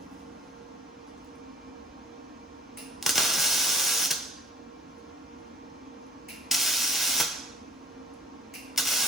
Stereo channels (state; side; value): normal; both; correlation 0.48